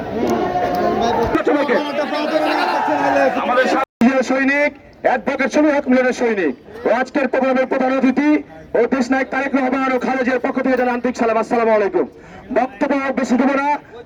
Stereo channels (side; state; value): both; identical; correlation 1.00